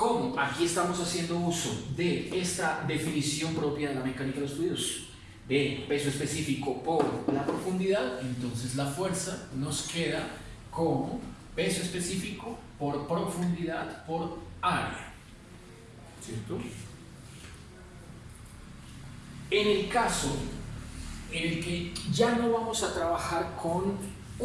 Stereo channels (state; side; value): identical; both; correlation 1.00